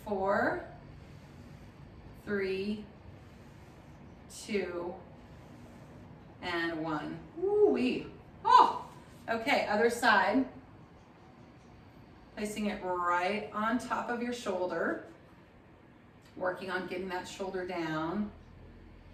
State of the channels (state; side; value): identical; both; correlation 1.00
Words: 4, 3, 2, and 1. Woo-wee. Oh, okay, other side. Placing it right on top of your shoulder. Working on getting that shoulder down.